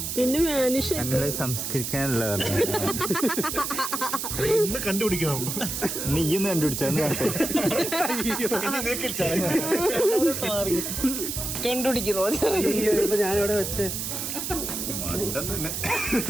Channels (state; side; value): noise; right; hiss, 4 dB below the sound